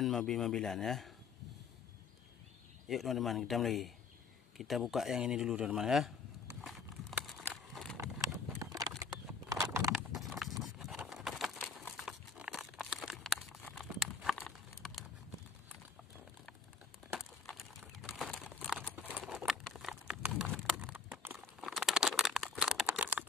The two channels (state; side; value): quieter; right; 5.0 dB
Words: mobil-mobilan ya. Yuk teman-teman, kita mulai. Kita buka yang ini dulu teman-teman ya.